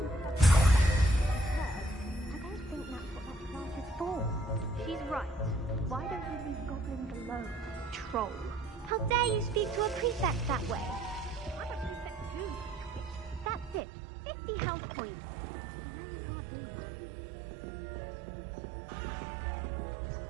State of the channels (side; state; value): left; drops out; at 13.9 s